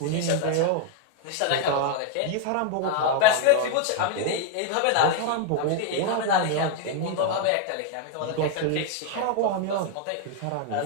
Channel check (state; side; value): different; both; correlation 0.00